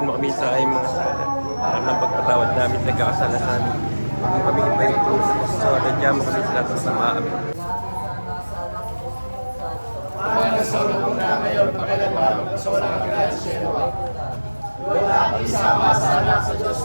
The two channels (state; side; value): inverted; both; correlation -1.00